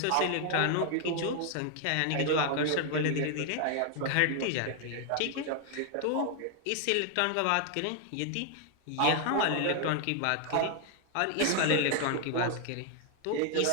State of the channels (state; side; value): different; both; correlation 0.00